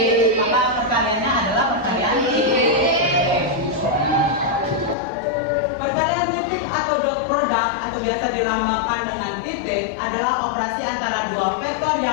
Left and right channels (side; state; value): right; drops out; at 5.0 s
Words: maka perkaliannya adalah perkalian titik. Perkalian titik atau dot product atau biasa dilambangkan dengan titik adalah operasi antara dua vektor